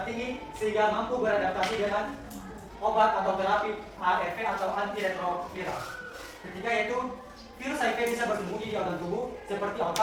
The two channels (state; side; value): identical; both; correlation 1.00